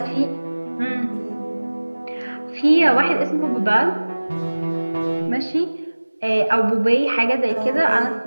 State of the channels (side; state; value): both; inverted; correlation -1.00